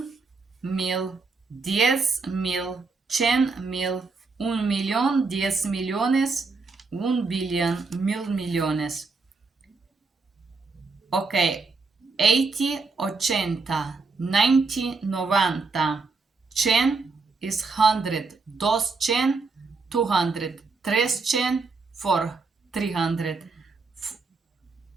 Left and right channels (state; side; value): quieter; left; 4.2 dB